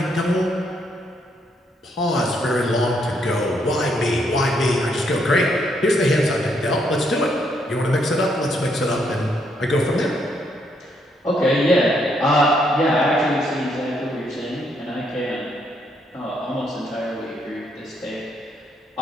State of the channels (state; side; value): normal; both; correlation 0.74